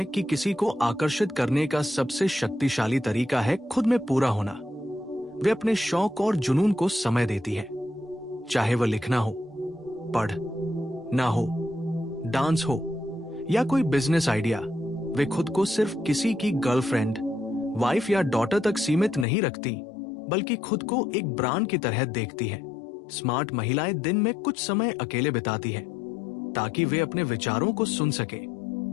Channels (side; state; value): right; drops out; at 19.2 s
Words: कि किसी को आकर्षित करने का सबसे शक्तिशाली तरीका है खुद में पूरा होना। वे अपने शौक और जुनून को समय देती है, चाहे वह लिखना हो, पढ़ना हो, डांस हो या कोई बिजनेस आइडिया। वे खुद को सिर्फ किसी की गर्लफ्रेंड, वाइफ या डॉटर तक सीमित नहीं रखती, बल्कि खुद को एक ब्रांड की तरह देखती है। स्मार्ट महिलाएं दिन में कुछ समय अकेले बिताती है ताकि वे अपने विचारों को सुन सके।